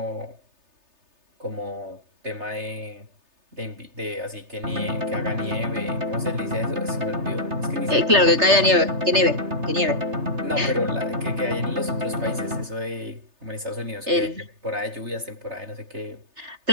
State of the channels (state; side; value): late; left; 3.3 ms